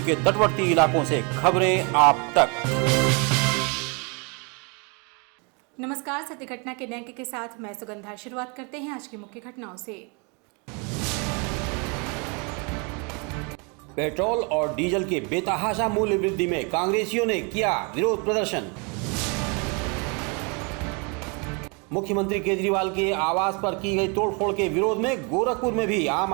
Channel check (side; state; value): left; quieter; 32.8 dB